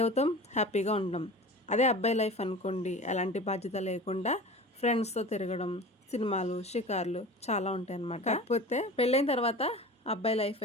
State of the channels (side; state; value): both; normal; correlation 0.36